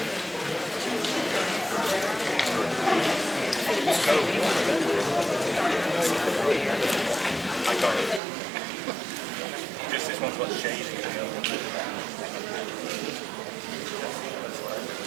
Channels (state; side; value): drops out; left; at 8.2 s